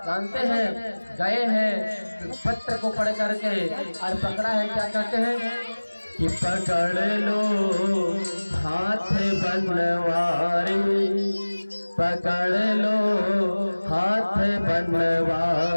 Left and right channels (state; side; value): inverted; both; correlation -1.00